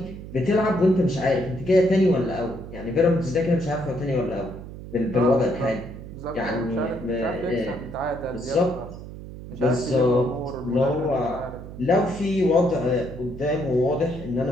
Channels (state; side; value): noise; right; hum, 12 dB below the sound